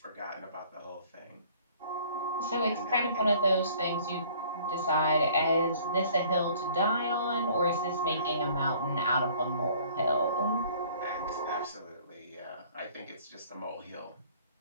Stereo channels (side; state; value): both; inverted; correlation -0.55